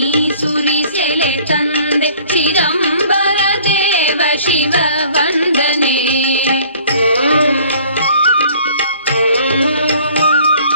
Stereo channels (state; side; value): inverted; both; correlation -0.53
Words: ಸುರಿಸೆಲೆ ತಂದೆ ಚಿದಂಬರ ದೇವ ಶಿವ ವಂದನೆ.